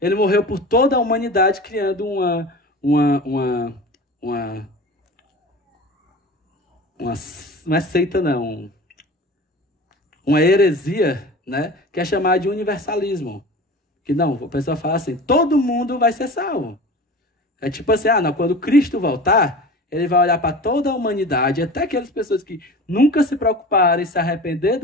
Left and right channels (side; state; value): both; normal; correlation 0.36